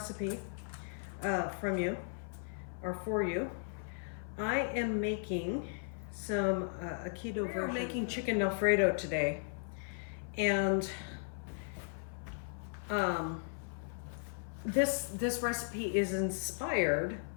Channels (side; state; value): right; silent; 54 dB below the other